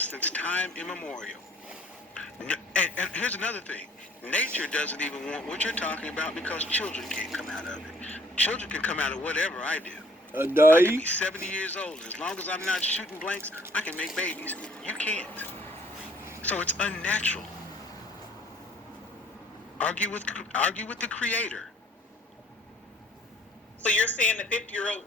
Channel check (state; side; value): normal; both; correlation 0.58